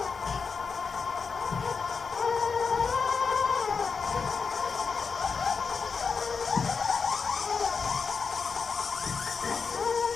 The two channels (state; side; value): quieter; right; 5.3 dB